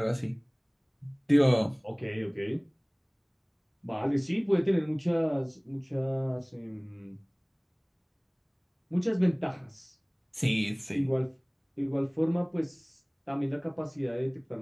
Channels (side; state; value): both; identical; correlation 1.00